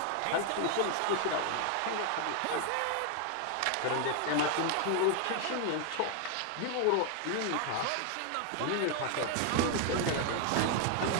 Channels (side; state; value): both; different; correlation 0.00